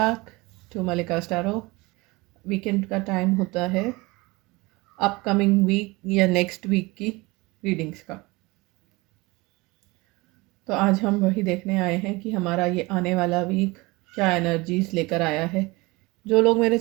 to Malika स्टारो। Weekend का time होता है अपकमिंग वीक या नेक्स्ट वीक की रीडिंग्स का। तो आज हम वही देखने आए हैं कि हमारा ये आने वाला वीक क्या एनर्जीज लेकर आया है। जो लोग मेरे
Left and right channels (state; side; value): quieter; left; 23.4 dB